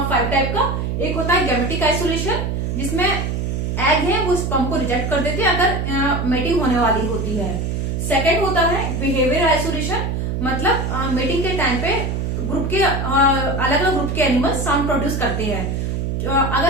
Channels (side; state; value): right; noise; hum, 1 dB below the sound